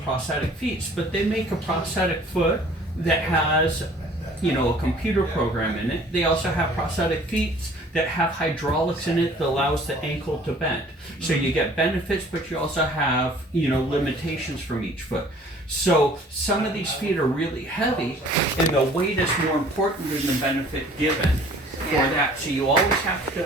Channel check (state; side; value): normal; both; correlation 0.52